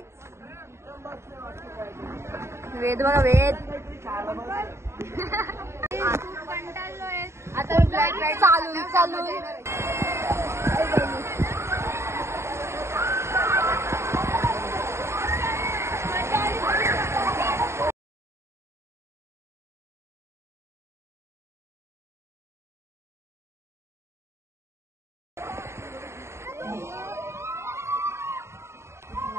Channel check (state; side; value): late; left; 0.13 ms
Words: वेद बघा वेद आता चालून